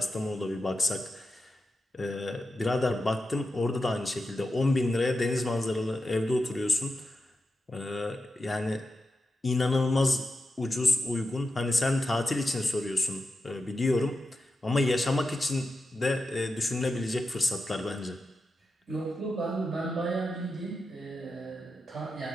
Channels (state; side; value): normal; both; correlation 0.89